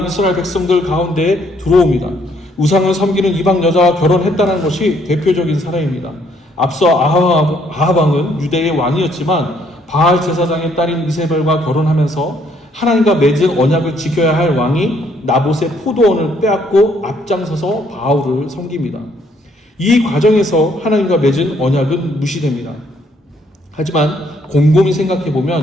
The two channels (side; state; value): both; normal; correlation 0.67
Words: 이스라엘 백성들 가운데 들어옵니다. 우상을 섬기는 이방 여자와 결혼했다는 것이 대표적인 사례입니다. 앞서 아합 왕은 유대의 왕이었지만 바알 제사장의 딸인 이세벨과 결혼하면서 하나님과 맺은 언약을 지켜야 할 왕이 나봇의 포도원을 빼앗고 앞장서서 바알을 섬깁니다. 이 과정에서 하나님과 맺은 언약은 무시됩니다. 하지만 곰곰이